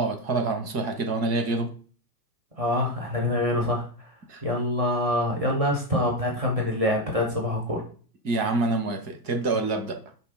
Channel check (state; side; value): late; left; 2.1 ms